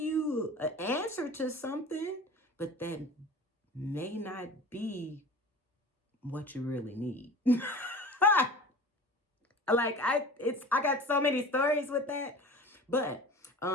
an answer to something, but that may not be what you really need. I got so many stories with that. But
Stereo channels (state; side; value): normal; both; correlation 0.38